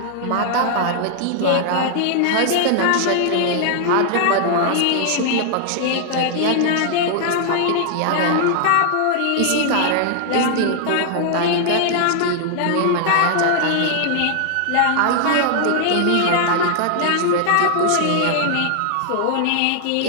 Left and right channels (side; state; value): both; different; correlation -0.01